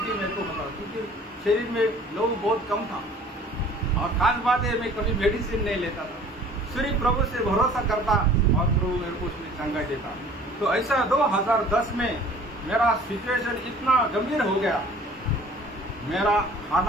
मेरे को होता था, क्योंकि शरीर में लहू बहुत कम था। और खास बात है, मैं कभी मेडिसिन नहीं लेता था, सिर्फ प्रभु से भरोसा करता, और प्रभु मेरे को उसमें चंगाई देता। तो ऐसा 2010 में मेरा सिचुएशन इतना गंभीर हो गया, मेरा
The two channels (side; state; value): both; normal; correlation 0.50